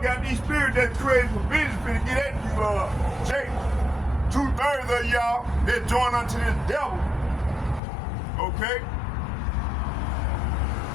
got these spirits that created for vengeance finna get at you, Jake. 2/3 of y'all that join unto this devil. Okay?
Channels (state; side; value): drops out; right; at 7.8 s